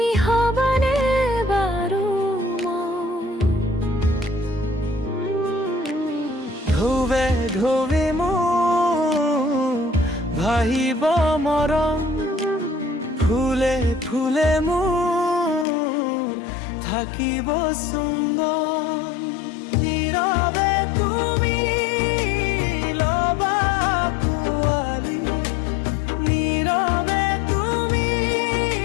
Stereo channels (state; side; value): drops out; right; at 15.7 s